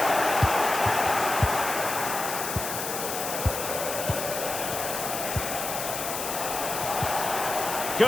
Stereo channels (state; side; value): noise; left; hiss, 5 dB below the sound